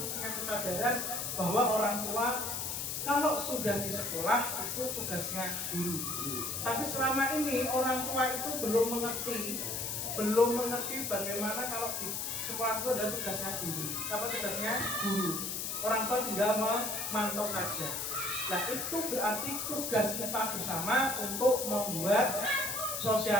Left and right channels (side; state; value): left; noise; hiss, 3 dB below the sound